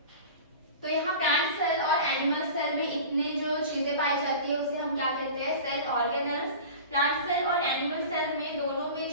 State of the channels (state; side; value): inverted; both; correlation -0.36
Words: तो यहाँ प्लांट सेल और एनिमल सेल में इतने जो चीजें पाई जाती है उसे हम क्या कहते हैं, सेल ऑर्गेनल्स। प्लांट सेल और एनिमल सेल में दोनों में